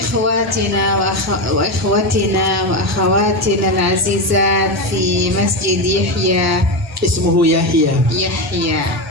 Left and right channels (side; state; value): both; normal; correlation 0.14